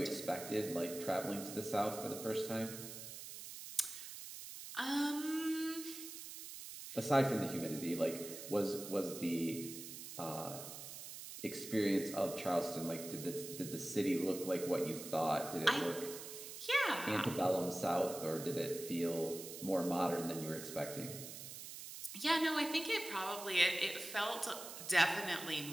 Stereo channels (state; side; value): noise; right; hiss, 10 dB below the sound